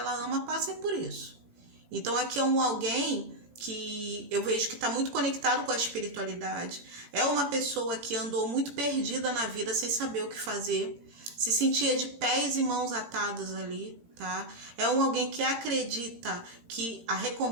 ama passem por isso. Então aqui é alguém que eu vejo que está muito conectado com a espiritualidade. É uma pessoa que andou muito perdida na vida sem saber o que fazer, se sentia de pés e mãos atadas ali, tá? É alguém que acredita que a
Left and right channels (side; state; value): left; late; 17 ms